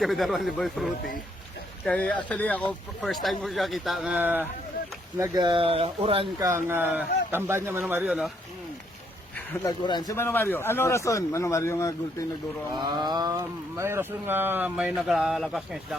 daruan ni Boy Fruity. Kaya actually ako, first time ko siya kita nga nag-uran kang tamban niya Mano Mario, no? Nag-uran. Si Mano Mario, ano rason? Mano Mario nga gulping nagduro? May rason nga may nagalagas ng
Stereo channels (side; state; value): both; normal; correlation 0.72